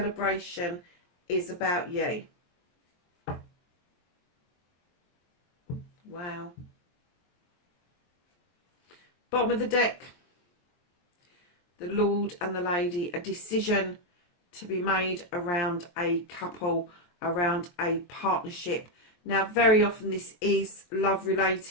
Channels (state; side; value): late; right; 23 ms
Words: is about you. Wow. Bottom of the deck. The Lord and the Lady. A decision to be made around a couple, around a partnership. Now, very often this is love